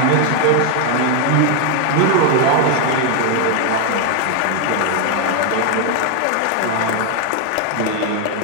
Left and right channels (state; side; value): different; both; correlation 0.01